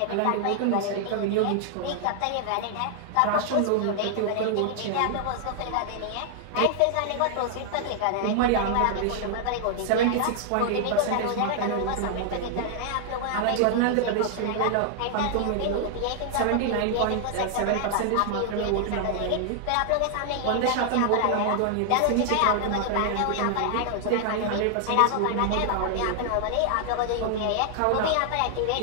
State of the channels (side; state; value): both; different; correlation 0.00